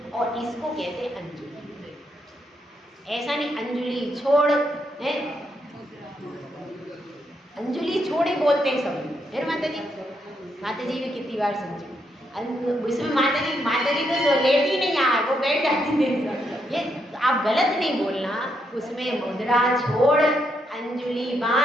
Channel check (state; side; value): normal; both; correlation 0.78